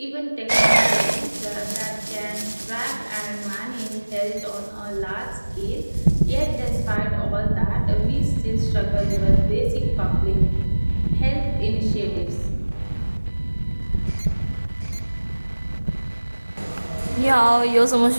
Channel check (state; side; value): inverted; both; correlation -1.00